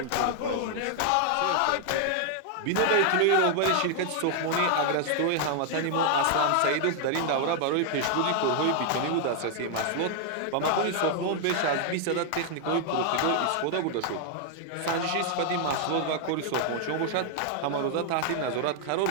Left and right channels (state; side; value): different; both; correlation 0.00